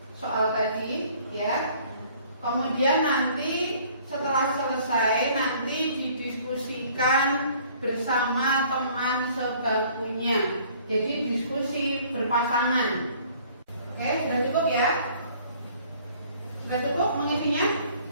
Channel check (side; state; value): both; inverted; correlation -0.56